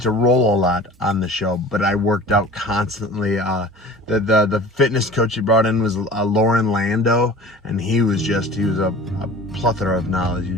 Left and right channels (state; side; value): normal; both; correlation 0.42